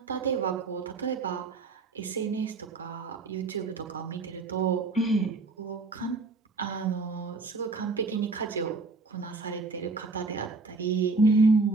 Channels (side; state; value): left; quieter; 3.8 dB